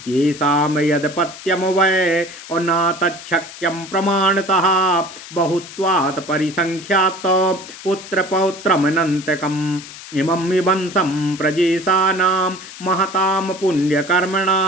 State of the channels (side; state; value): left; noise; hiss, 15 dB below the sound